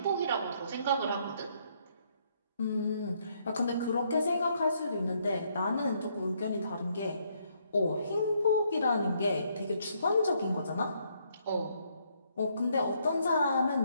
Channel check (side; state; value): both; inverted; correlation -0.71